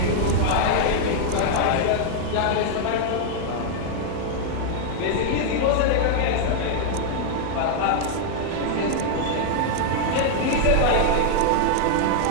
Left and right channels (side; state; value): both; different; correlation 0.00